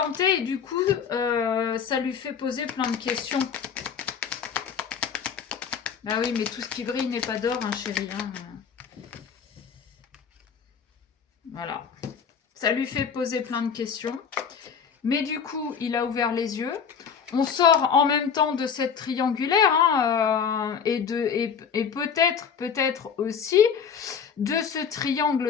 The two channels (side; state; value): right; quieter; 6.9 dB